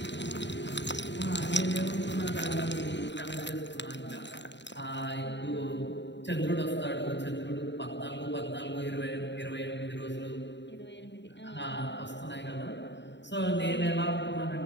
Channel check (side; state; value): right; late; 0.52 ms